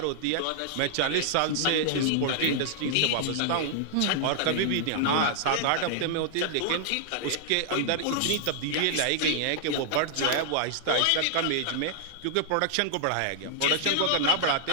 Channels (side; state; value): both; different; correlation -0.01